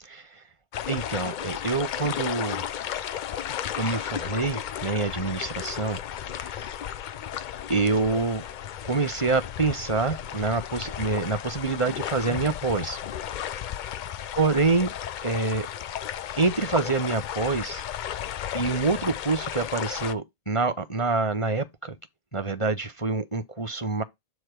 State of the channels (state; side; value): late; right; 2.2 ms